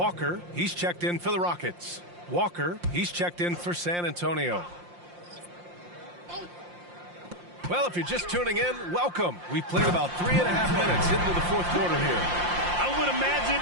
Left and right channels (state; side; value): late; left; 5.7 ms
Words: he's checked in for the Rockets. Walker, he's checked in for San Antonio. Well, if you're just tuning in, welcome. We've played about 3.5 minutes into the fourth quarter here. I would imagine